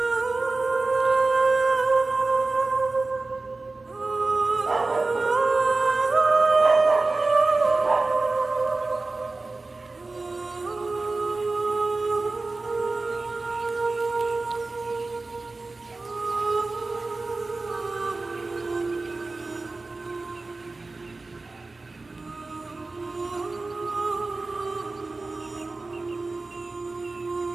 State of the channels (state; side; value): quieter; left; 3.4 dB